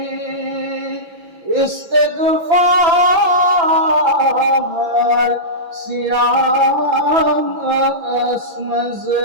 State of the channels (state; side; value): late; left; 6.0 ms